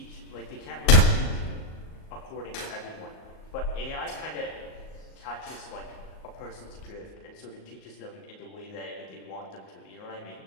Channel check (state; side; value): late; right; 38 ms